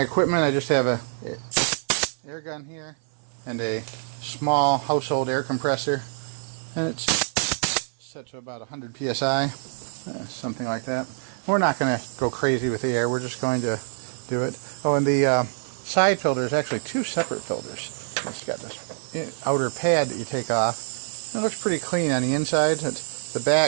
equipment I just have a air gun here and a small household air compressor, and it's set to about 100 psi, something like that. We're not going to go crazy with the air, we're just going to do it. Oh, and the side filter is actually two separate filters. It's got this outer pad that you take off. It looks pretty clean on the inside. The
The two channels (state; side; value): silent; left; digital silence